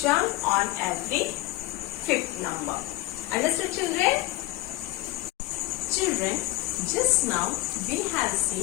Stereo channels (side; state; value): right; quieter; 18.5 dB